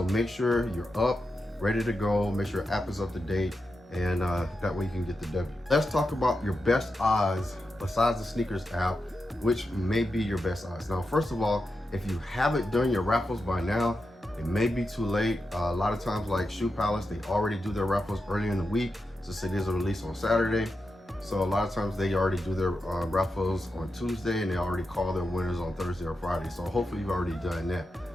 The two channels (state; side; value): normal; both; correlation 0.88